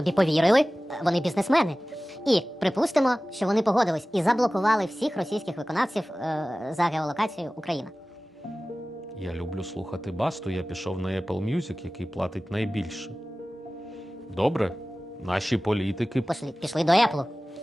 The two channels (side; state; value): both; normal; correlation 0.97